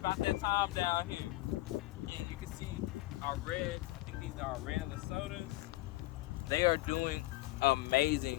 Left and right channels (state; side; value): quieter; right; 18.8 dB